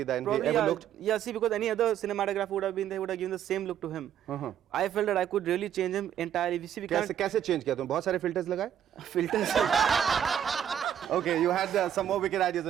than he ever looked? Yeah, see, because any other cinematographer would have been there, would have given the same look to him. I felt that I could really change him entirely. We see, we can't कैसे change किया तुम? बहुत सारे filters लगाए? filters. Okay, you had some more wicked ideas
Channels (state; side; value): quieter; left; 9.8 dB